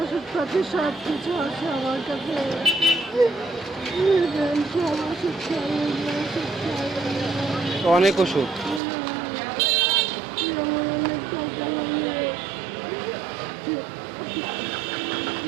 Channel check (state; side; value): drops out; left; at 8.8 s